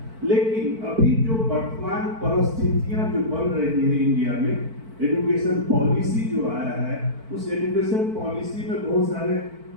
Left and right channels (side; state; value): left; late; 4.5 ms